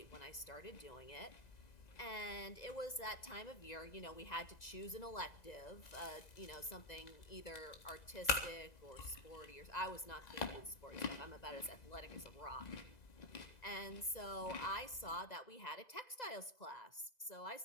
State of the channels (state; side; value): late; right; 2.0 ms